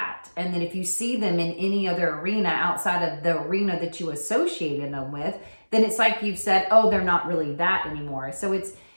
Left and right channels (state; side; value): inverted; both; correlation -1.00